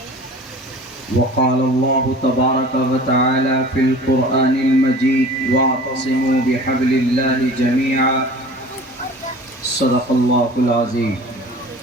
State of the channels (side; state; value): both; normal; correlation 0.42